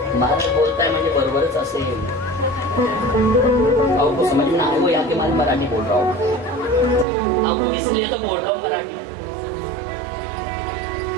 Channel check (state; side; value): drops out; left; at 7.1 s